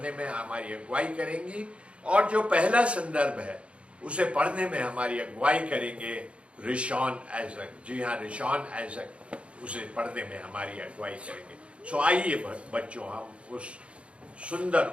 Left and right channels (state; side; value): late; left; 0.060 ms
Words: में हमारी अगुवाई करेंगी। और जो पहला संदर्भ है उसे पढ़ने में हमारी अगुवाई करेंगे रिशॉन आइजक। जी हाँ, रिशॉन आइजक उसे पढ़ने में हमारी अगुवाई करेंगे। सो आइए बच्चों, हम उस सुंदर